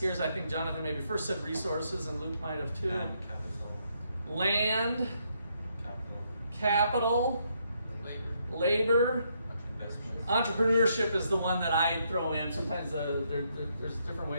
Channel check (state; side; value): inverted; both; correlation -0.75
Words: I think Jonathan maybe first said resources, and Luke might have too. Land, capital, labor. Entrepreneurship is the one that I throw in. Sometimes there's different